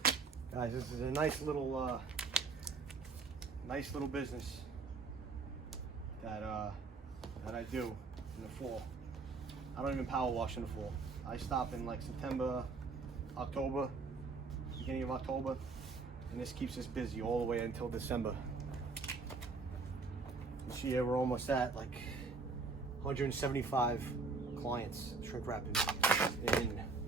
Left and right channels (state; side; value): quieter; left; 4.2 dB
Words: Guys, this is a nice little business that I do in the fall. I don't even power wash in the fall. I stop in like September, October, beginning of October, and this keeps us busy all the way until December. This year we're almost at like 175 clients shrink wrapping in